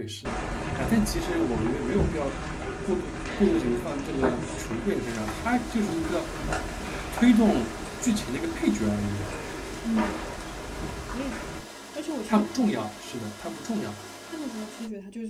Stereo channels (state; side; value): identical; both; correlation 1.00